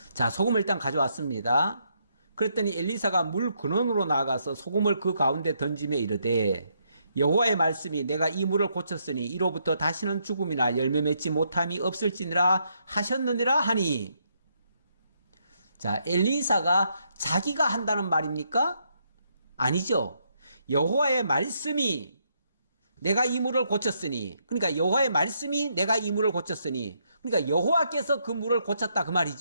자, 소금을 일단 가져왔습니다. 그랬더니 엘리사가 물 근원으로 나가서 소금을 그 가운데 던지며 이르되 여호와의 말씀이 내가 이 물을 고쳤으니 이로부터 다시는 죽음이나 열매 맺지 못함이 없을지니라 하셨느니라 하니. 자, 엘리사가 자기가 한다는 말입니까? 아니죠. 여호와의 말씀이 내가 이 물을 고쳤으니, 그러니까 여호와의 말씀이 내가 이 물을 고쳤으니, 그러니까 여호와께서 그 물을 고쳤다 그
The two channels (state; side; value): inverted; both; correlation -0.76